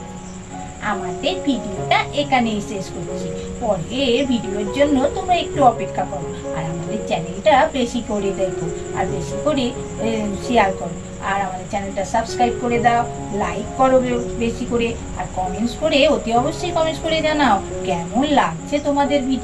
আমাদের ভিডিওটা এখানেই শেষ করছি। পরের ভিডিওর জন্য তোমরা একটু অপেক্ষা করো, আর আমাদের চ্যানেলটা বেশি করে দেখো, আর বেশি করে শেয়ার করো, আর আমাদের চ্যানেলটা সাবস্ক্রাইব করে দাও, লাইক করো বেশি করে, আর কমেন্টস করে অতি অবশ্যই কমেন্টস করে জানাও কেমন লাগছে তোমাদের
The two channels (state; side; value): identical; both; correlation 1.00